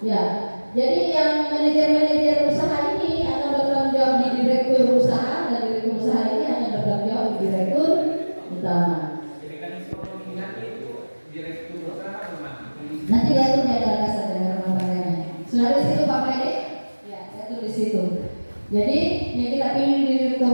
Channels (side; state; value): both; inverted; correlation -1.00